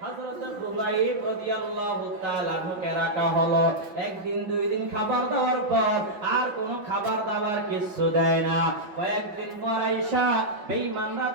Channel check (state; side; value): late; left; 5.7 ms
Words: হযরত খুবাইব রাদিয়াল্লাহু তাআলা আনহুকে রাখা হলো একদিন দুই দিন খাবার দেওয়ার পর আর কোনো খাবার দাবার কিছু দেয় না কয়েকদিন পর আয়েশা বেঈমানরা